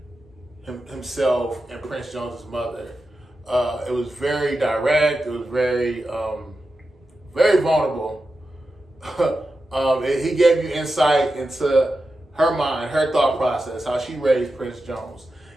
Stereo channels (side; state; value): both; normal; correlation 0.91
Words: himself and Prince Jones's mother. It was very direct. It was very very vulnerable. He gave you insight into her mind, her thought process, how she raised Prince Jones.